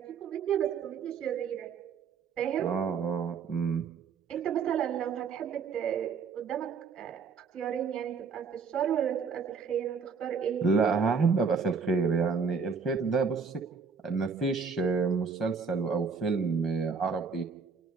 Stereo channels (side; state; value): left; quieter; 5.5 dB